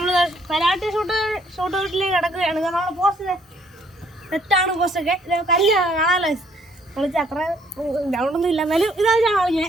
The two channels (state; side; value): normal; both; correlation 0.65